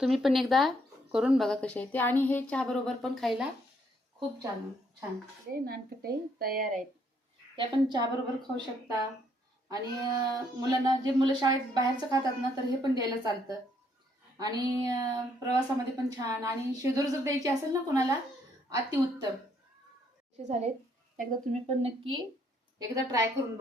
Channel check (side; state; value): both; normal; correlation 0.70